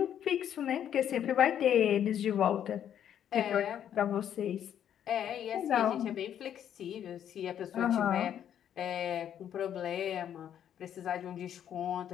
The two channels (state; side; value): quieter; right; 9.8 dB